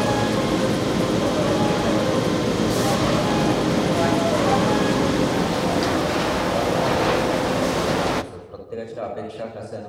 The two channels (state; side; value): identical; both; correlation 1.00